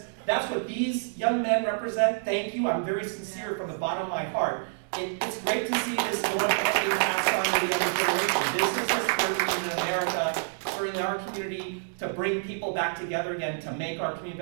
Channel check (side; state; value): left; silent; digital silence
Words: That's what these young men represent. Thank you. I'm very sincere from the bottom of my heart. It's great to see this going and being passed on to the younger generation. This is the spirit we need in America, certainly our community, to bring people back together again, to make our community